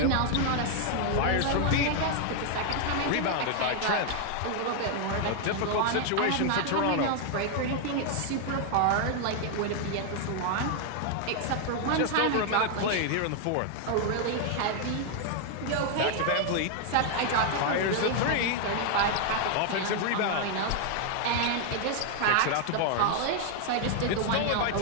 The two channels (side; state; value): both; different; correlation 0.00